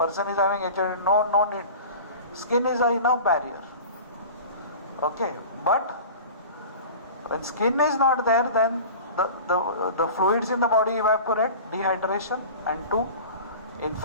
is having HIV, no need. Skin is enough barrier. Okay, but when skin is not there, then the fluids in the body evaporate, dehydration, and to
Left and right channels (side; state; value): both; inverted; correlation -0.37